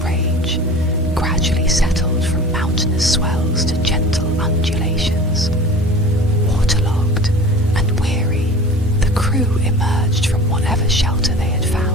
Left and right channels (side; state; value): both; normal; correlation 0.40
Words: rage, gradually settled from mountainous swells to gentle undulations. Waterlogged and weary, the crew emerged from whatever shelter they had